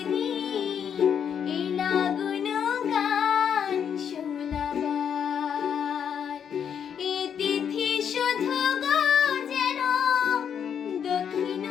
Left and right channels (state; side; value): quieter; right; 8.0 dB